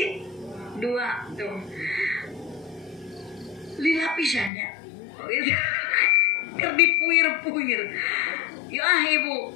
2 tuh lila pisannya keur dipuir-puir ya ibu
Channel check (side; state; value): right; drops out; at 4.5 s